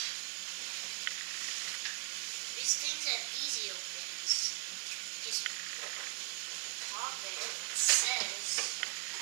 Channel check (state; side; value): silent; left; 52 dB below the other